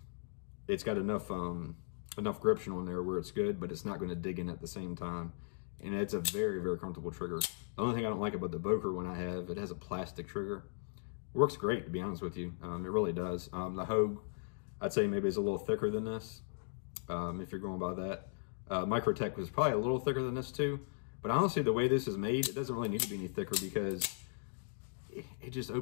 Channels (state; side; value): silent; right; digital silence